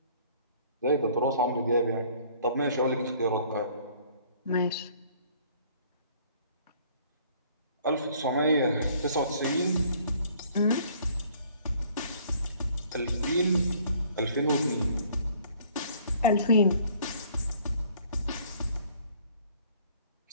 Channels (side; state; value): both; inverted; correlation -0.57